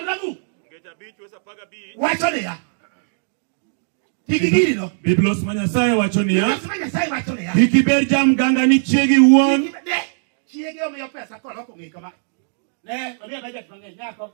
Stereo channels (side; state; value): left; silent; digital silence